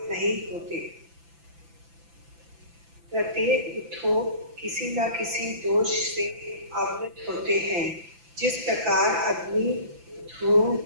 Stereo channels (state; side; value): late; left; 5.9 ms